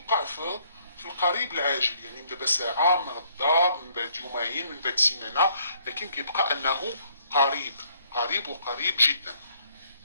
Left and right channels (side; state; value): both; inverted; correlation -0.65